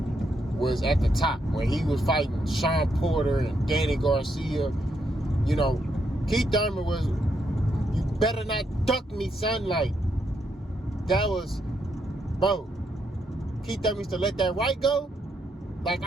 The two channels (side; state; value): both; normal; correlation 0.78